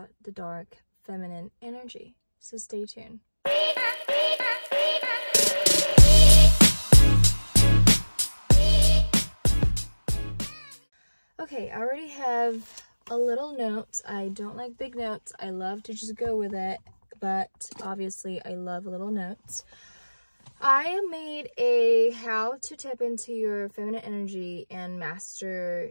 the dark feminine energy, so stay tuned. Okay, I already have a little note. I don't like big notes. I love to just go with it, but obviously I love little notes. I made a how to tap into your feminine energy and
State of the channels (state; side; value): inverted; both; correlation -1.00